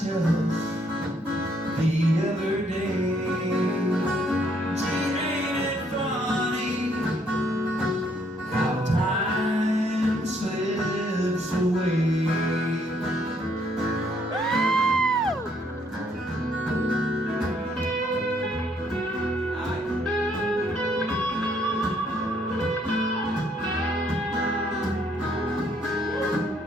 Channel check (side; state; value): both; normal; correlation 0.68